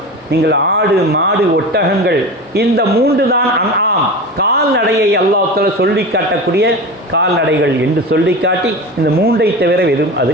நீங்கள் ஆடு, மாடு, ஒட்டகங்கள், இந்த 3 தான் அன்ஆம் கால்நடையை அல்லாஹ் தஆலா சொல்லி காட்டக்கூடிய கால்நடைகள் என்று சொல்லி காட்டி, இந்த 3ஐ தவிர வெறும்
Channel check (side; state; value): both; normal; correlation 0.29